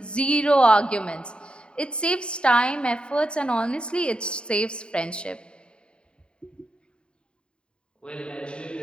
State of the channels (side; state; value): right; late; 0.053 ms